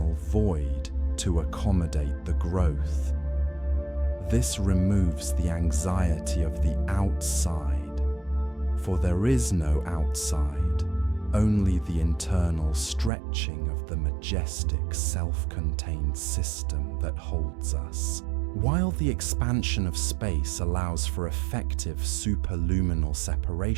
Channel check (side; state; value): left; drops out; at 13.1 s